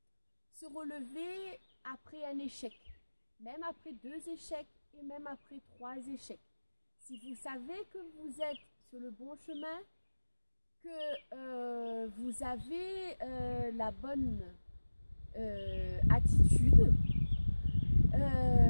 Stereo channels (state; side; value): inverted; both; correlation -1.00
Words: Se relever après un échec, même après 2 échecs et même après 3 échecs. Si vous savez que vous êtes sur le bon chemin, que vous avez la bonne attitude,